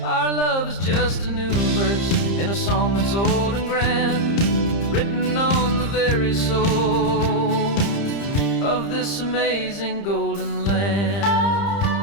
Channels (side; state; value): right; late; 30 ms